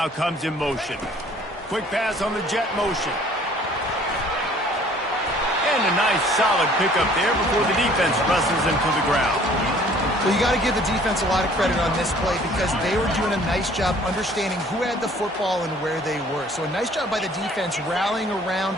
comes in motion. Quick pass on the jet motion. And a nice solid pickup there before the defense wrestles him to the ground. Well, you got to give the defense a lot of credit on this play because they were doing a nice job understanding who had the football and where they were. So a nice job by the defense rallying around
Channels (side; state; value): both; normal; correlation 0.55